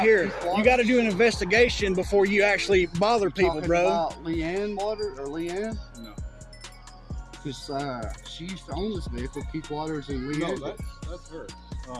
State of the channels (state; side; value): identical; both; correlation 1.00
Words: here. You got to do an investigation before you actually bother people, bro. About Leanne Waters or Leanne? No. Because she used to own this vehicle, Keith Waters and Leanne. No, that's her.